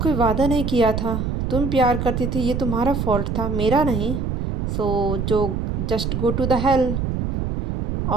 कोई वादा नहीं किया था। तुम प्यार करती थी, ये तुम्हारा फॉल्ट था, मेरा नहीं। सो जो just go to the hell.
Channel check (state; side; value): noise; right; rumble, 2 dB below the sound